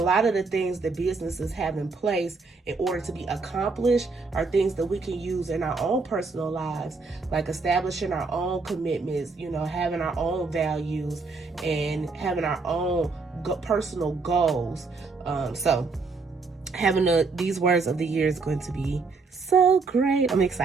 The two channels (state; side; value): quieter; left; 4.2 dB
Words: of the things that businesses have in place in order to be accomplished are things that we can use in our own personal lives, like establishing our own commitments, having our own values, and having our own personal goals. So having these words of the year is going to be so great. I'm